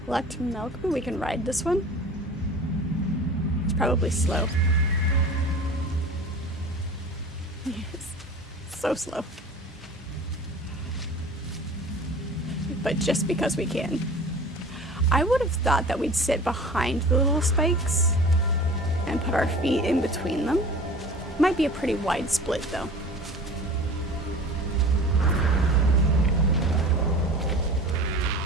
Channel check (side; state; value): both; normal; correlation 0.40